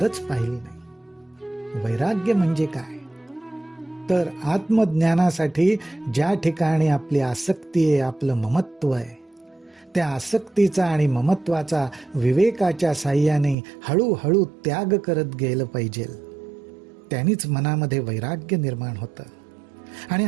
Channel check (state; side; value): drops out; left; at 13.6 s